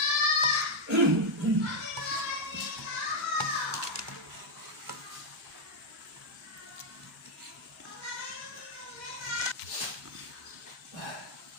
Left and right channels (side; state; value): both; normal; correlation 0.01